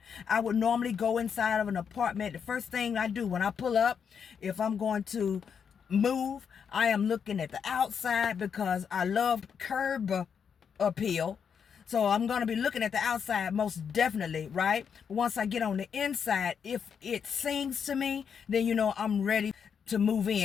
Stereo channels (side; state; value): right; quieter; 7.0 dB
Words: I would normally go inside of an apartment. The first thing I do when I pull up, if I'm going to move, I am looking at the outside because I love curb appeal. So I'm going to be looking at the outside most definitely, right? Once I get on the inside, if it sings to me, then I'm ready to move